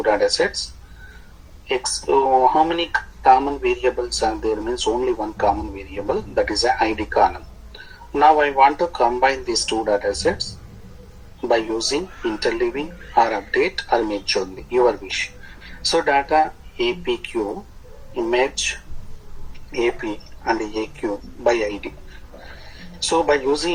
data sets. How many common variables are there? Means only one common variable, that is a ID column. Now I want to combine these two data sets by using interleaving or update or merge only, your wish. So data APQ, merge AP and AQ by ID. So by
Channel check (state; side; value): identical; both; correlation 1.00